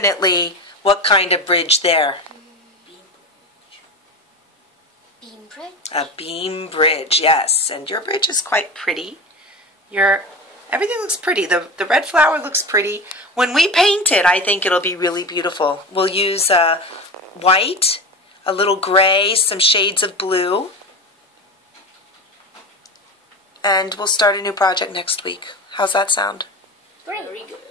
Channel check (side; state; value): both; normal; correlation 0.27